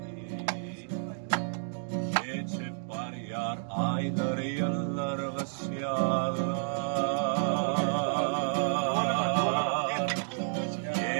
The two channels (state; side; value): silent; left; digital silence